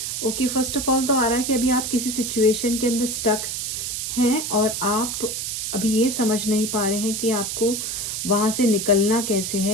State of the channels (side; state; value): right; noise; hiss, 3 dB below the sound